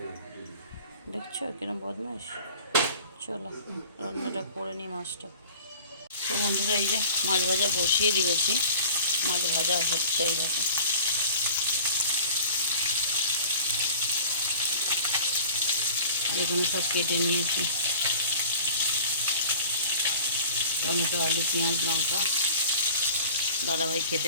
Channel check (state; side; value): inverted; both; correlation -0.42